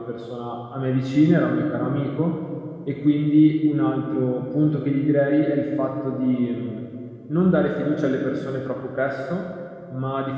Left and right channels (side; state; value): both; identical; correlation 1.00